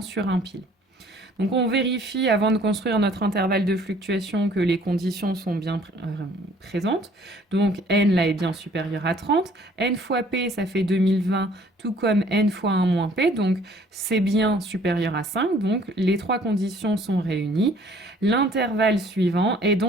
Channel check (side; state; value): both; normal; correlation 0.57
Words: un pile. Donc on vérifie avant de construire notre intervalle de fluctuation que les conditions sont bien présentes. Donc n là est bien supérieur à 30. N fois p ça fait 2020, tout comme n fois 1 moins p. Donc c'est bien supérieur à 5. Donc les trois conditions sont réunies. L'intervalle suivant est